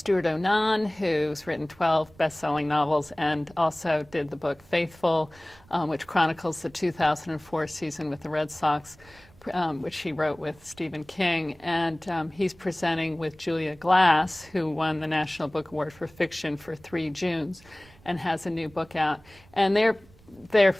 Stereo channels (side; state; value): right; noise; rumble, 26 dB below the sound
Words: Onan, who's written 12 best-selling novels and also did the book Faithful, which chronicles the 2004 season with the Red Sox, which he wrote with Stephen King. And he's presenting with Julia Glass, who won the National Book Award for Fiction for 3 Junes and has a new book out. And they're